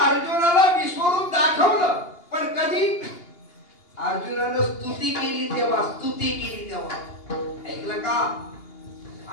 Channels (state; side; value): late; right; 2.8 ms